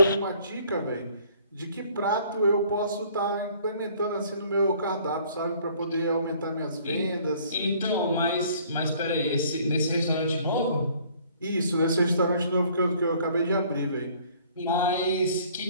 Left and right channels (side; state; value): both; inverted; correlation -0.57